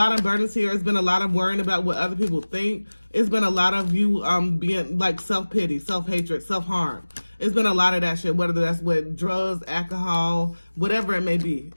of burdens here. It's been a lot of worrying about what other people think. It's been a lot of you being like self-pity, self-hatred, self-harm. It's been a lot of that shit, whether that's with drugs, alcohol, whatever it may be.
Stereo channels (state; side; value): inverted; both; correlation -1.00